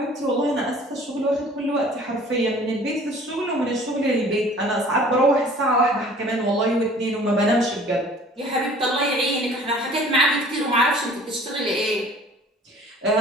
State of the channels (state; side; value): normal; both; correlation 0.49